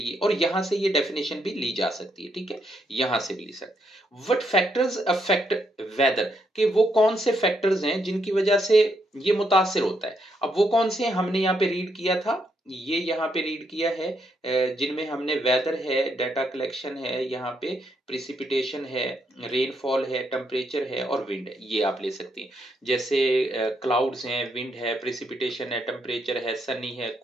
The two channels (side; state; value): both; normal; correlation 0.77